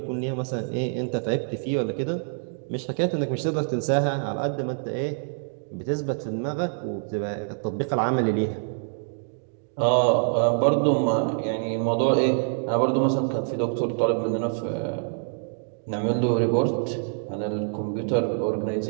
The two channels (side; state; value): left; silent; digital silence